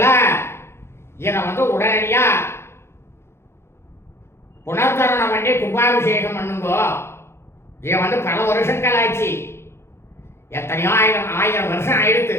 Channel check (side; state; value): right; late; 0.12 ms